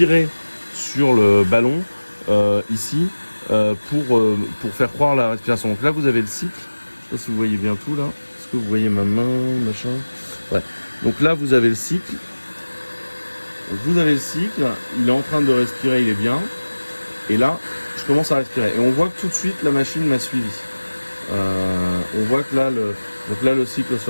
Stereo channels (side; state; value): both; inverted; correlation -1.00